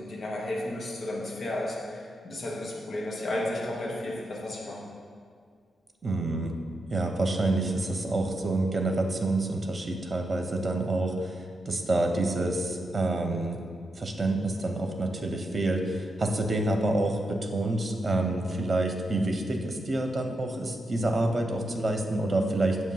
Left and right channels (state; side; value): normal; both; correlation 0.85